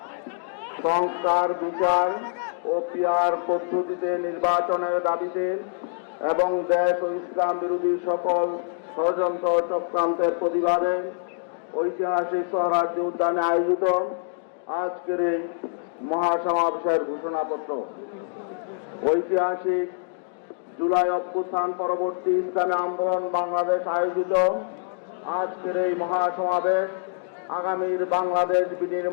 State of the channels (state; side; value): silent; right; digital silence